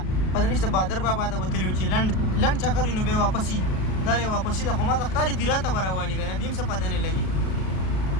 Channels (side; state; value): right; late; 37 ms